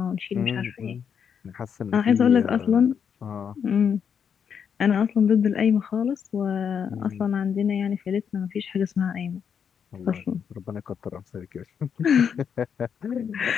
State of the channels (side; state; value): right; quieter; 7.4 dB